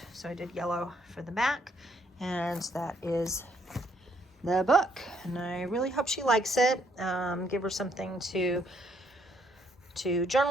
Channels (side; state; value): both; normal; correlation 0.69